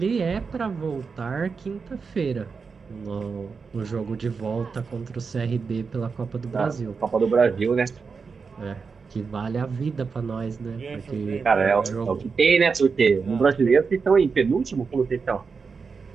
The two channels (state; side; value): quieter; left; 5.2 dB